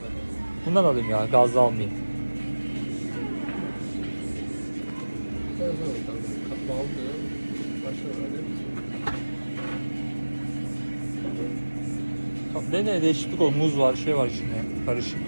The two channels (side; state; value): both; inverted; correlation -1.00